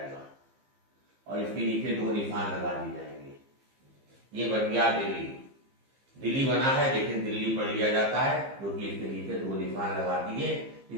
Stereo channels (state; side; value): late; left; 15 ms